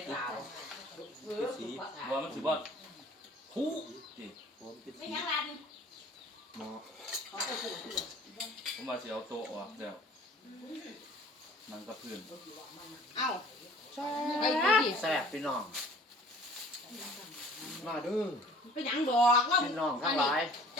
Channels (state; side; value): normal; both; correlation 0.50